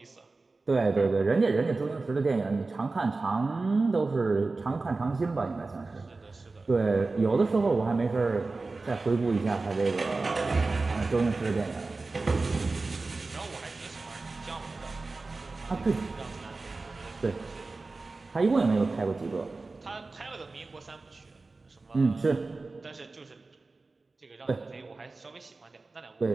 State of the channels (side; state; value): left; quieter; 3.6 dB